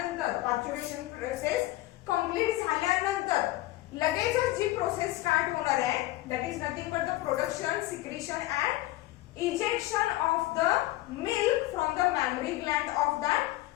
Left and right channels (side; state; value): right; quieter; 17.4 dB